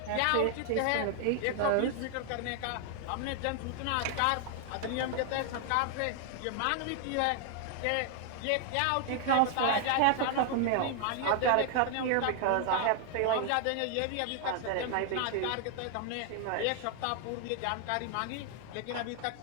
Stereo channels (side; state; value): both; different; correlation 0.00